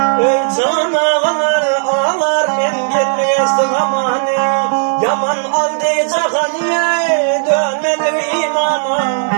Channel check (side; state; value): left; silent; digital silence